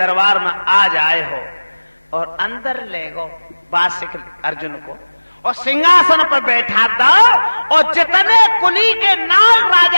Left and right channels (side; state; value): both; inverted; correlation -1.00